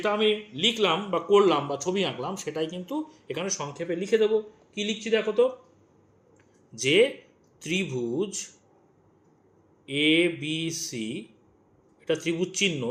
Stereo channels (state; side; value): identical; both; correlation 1.00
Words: আমি লিখলাম বা করলাম বা ছবি আঁকলাম, সেটাই কিন্তু এখানে সংক্ষেপে লিখে দেবো। কি লিখছি দেখো তো, যে ত্রিভুজ এ বি সি, এটা ত্রিভুজ চিহ্ন,